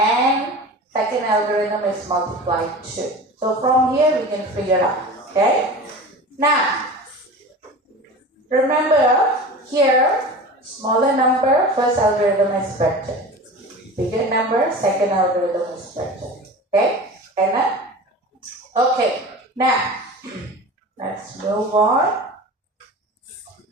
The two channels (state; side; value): normal; both; correlation 0.34